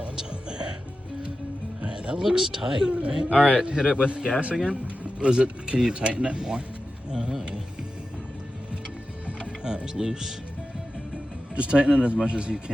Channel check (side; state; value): both; normal; correlation 0.93